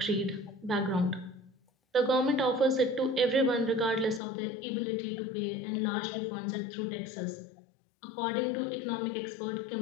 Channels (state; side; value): drops out; right; at 4.2 s